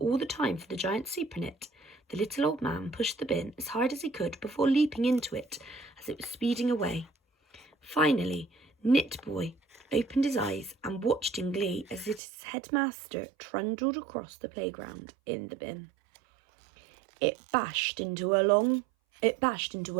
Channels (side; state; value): left; drops out; at 12.2 s